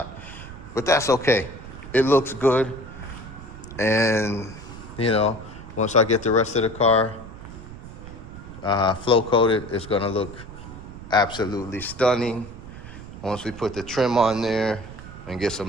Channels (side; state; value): right; noise; rumble, 14 dB below the sound